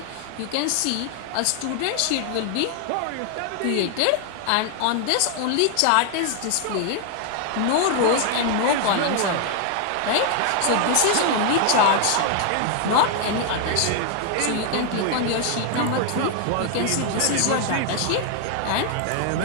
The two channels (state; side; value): different; both; correlation 0.00